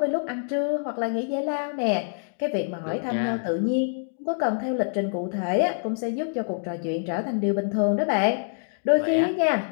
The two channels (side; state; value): right; silent; digital silence